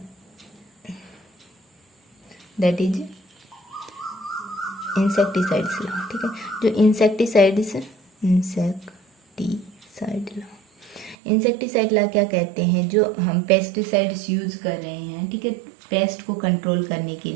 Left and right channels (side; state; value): left; drops out; at 11.2 s